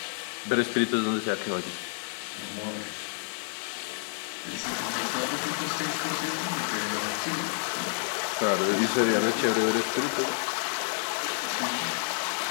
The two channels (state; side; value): silent; right; 58 dB below the other